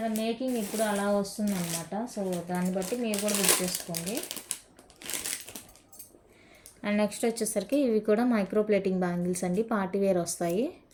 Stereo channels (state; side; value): identical; both; correlation 1.00